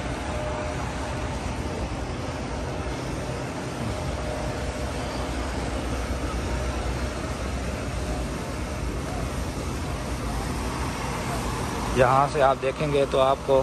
यहाँ से आप देखेंगे तो आपको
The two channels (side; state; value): both; identical; correlation 1.00